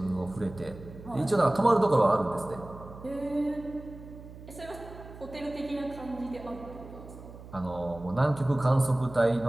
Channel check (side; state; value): right; noise; hum, 16 dB below the sound